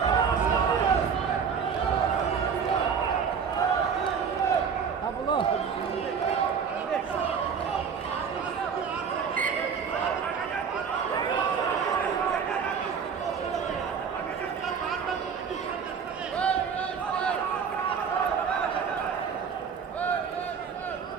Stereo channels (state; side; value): quieter; left; 6.6 dB